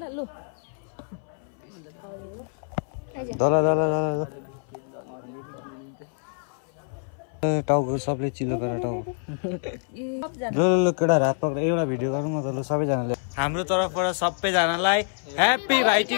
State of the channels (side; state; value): right; silent; 59 dB below the other